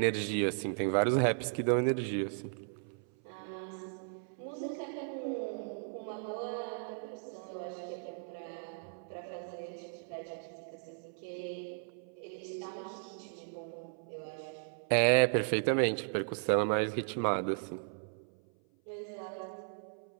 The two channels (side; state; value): left; silent; 54 dB below the other